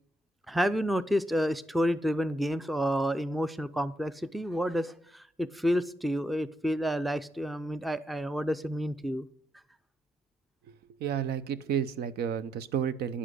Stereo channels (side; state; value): both; normal; correlation 0.81